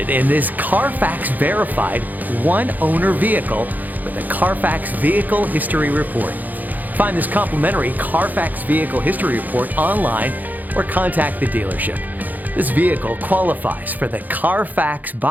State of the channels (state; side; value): late; left; 0.083 ms